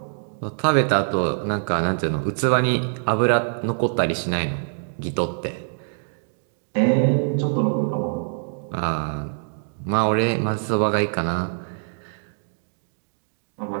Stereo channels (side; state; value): left; silent; digital silence